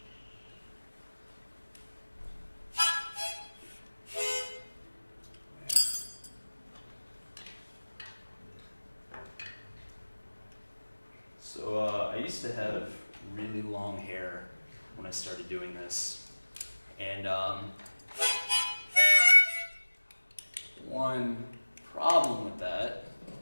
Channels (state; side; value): inverted; both; correlation -1.00